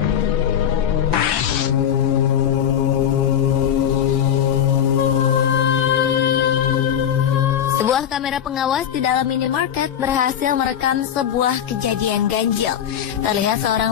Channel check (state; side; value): quieter; right; 9.4 dB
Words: Sebuah kamera pengawas di dalam minimarket berhasil merekam sebuah kejadian ganjil. Terlihat